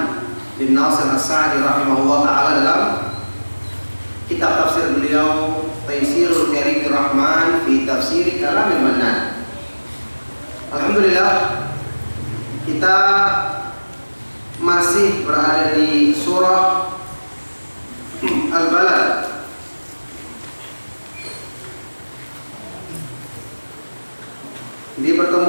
bin Nasir As-Sa'di rahimahullah ta'ala dalam kitab tafsir beliau Taisirul Karimir Rahman fi Tafsir Kalamil Mannan. Alhamdulillah, kita masih berada di surah Al-Balad. Di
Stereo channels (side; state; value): both; inverted; correlation -1.00